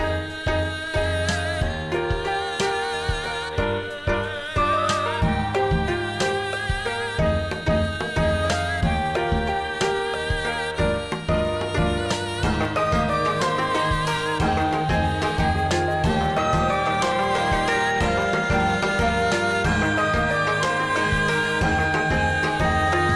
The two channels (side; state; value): both; identical; correlation 1.00